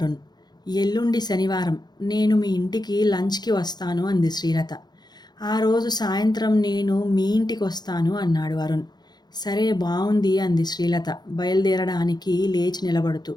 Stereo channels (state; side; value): late; right; 0.20 ms